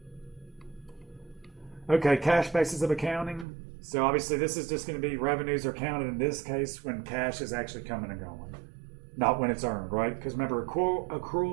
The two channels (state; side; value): drops out; left; at 3.5 s